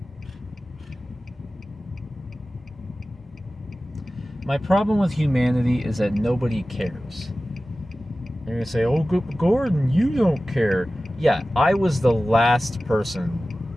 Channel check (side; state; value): both; normal; correlation 0.96